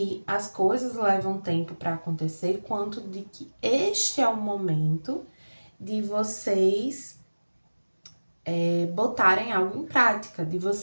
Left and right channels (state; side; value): inverted; both; correlation -1.00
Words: as coisas levam tempo para acontecer, quanto de que este é o momento de vocês botarem algo em prática, de